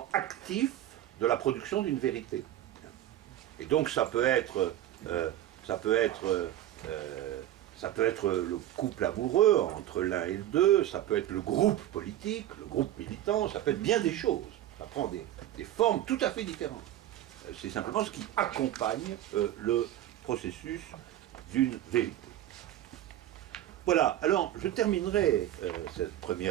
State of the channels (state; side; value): quieter; left; 12.8 dB